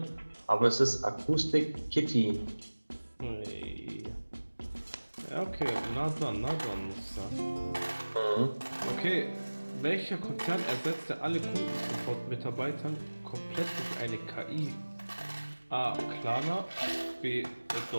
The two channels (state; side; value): inverted; both; correlation -1.00